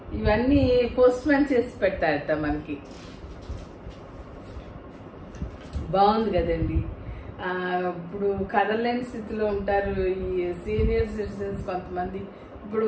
ఇవన్నీ పోస్ట్ మ్యాన్ చేసి పెడతారట మనకి. బాగుంది కదండి. ఇప్పుడు కదలలేని స్థితిలో ఉంటారు ఈ సీనియర్ సిటిజన్స్ కొంతమంది. ఇప్పుడు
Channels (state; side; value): identical; both; correlation 1.00